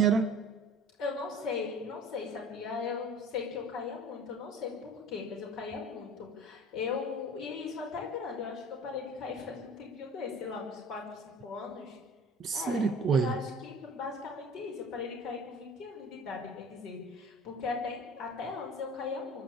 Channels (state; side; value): normal; both; correlation 0.42